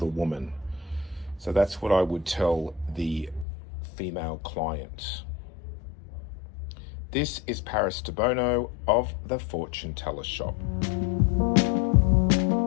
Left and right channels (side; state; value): right; drops out; at 3.5 s